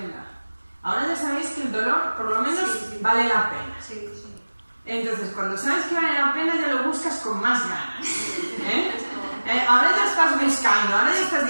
Ahora ya sabéis que el dolor, por lo menos, vale la pena. Sí. Entonces, cuando sabes que vale la pena, ya lo buscas con más ganas. Ahora ya estás buscando, ahora ya estás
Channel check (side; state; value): both; inverted; correlation -1.00